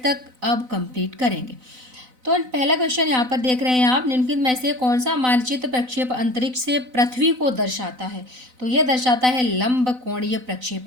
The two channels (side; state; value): left; late; 4.0 ms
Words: तक अब कंप्लीट करेंगे। तो पहला क्वेश्चन यहाँ पर देख रहे हैं आप, निम्नलिखित में से कौन सा मानचित्र प्रक्षेप अंतरिक्ष से पृथ्वी को दर्शाता है? तो यह दर्शाता है लंब कोणीय